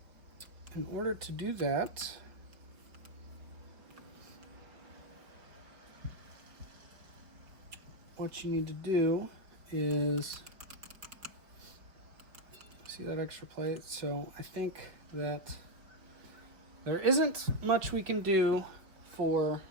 In order to do that, what you need to do is, see that extra plate? So I think that there isn't much we can do for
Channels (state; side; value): late; left; 4.8 ms